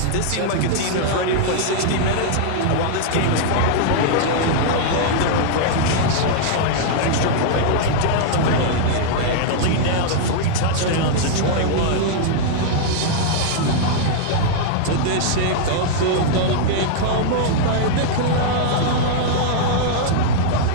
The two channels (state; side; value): different; both; correlation -0.01